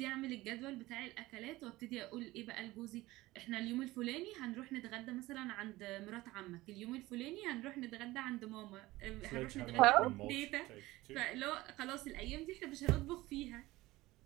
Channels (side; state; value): left; quieter; 18.7 dB